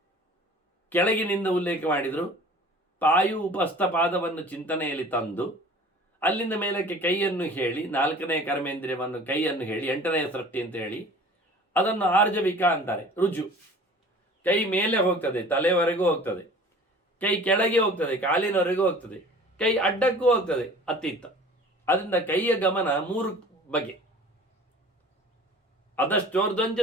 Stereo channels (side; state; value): both; normal; correlation 0.45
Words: ಕೆಳಗಿನಿಂದ ಉಲ್ಲೇಖ ಮಾಡಿದರು. ಪಾಯು ಉಪಸ್ಥ ಪಾದವನ್ನು ಚಿಂತನೆಯಲ್ಲಿ ತಂದು ಅಲ್ಲಿಂದ ಮೇಲಕ್ಕೆ ಕೈಯನ್ನು ಹೇಳಿ, 4ನೇ ಕರ್ಮೇಂದ್ರಿಯವನ್ನು ಕೈಯನ್ನು ಹೇಳಿ 8ನೇ ಸೃಷ್ಟಿ ಅಂತ ಹೇಳಿ ಅದನ್ನು ಆರ್ಜವಿಕ ಅಂತಾರೆ. ರುಜು, ಕೈ ಮೇಲೆ ಹೋಗ್ತದೆ, ತಲೆವರೆಗೂ ಹೋಗ್ತದೆ, ಕೈ ಕೆಳಗೆ ಹೋಗ್ತದೆ, ಕಾಲಿನವರೆಗೂ ಹೋಗ್ತದೆ, ಕೈ ಅಡ್ಡಕ್ಕೂ ಹೋಗ್ತದೆ, ಅತ್ತಿತ್ತ. ಅದರಿಂದ ಕೈಯ ಗಮನ 3 ಬಗೆ. ಅದಷ್ಟೋರ್ಧ್ವಂಚ